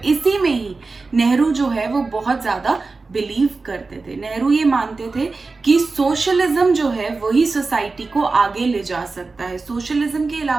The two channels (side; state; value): left; quieter; 3.9 dB